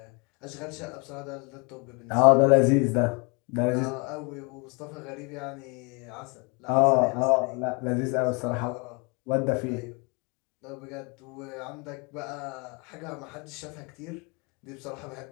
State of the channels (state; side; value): quieter; right; 31.4 dB